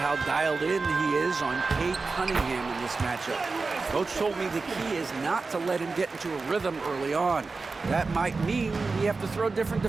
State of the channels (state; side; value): quieter; left; 4.1 dB